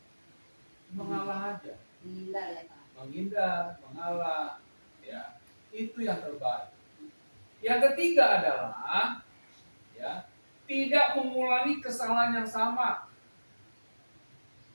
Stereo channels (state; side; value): inverted; both; correlation -1.00